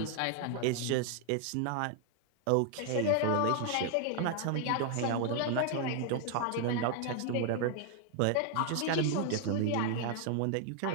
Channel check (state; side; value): different; both; correlation 0.00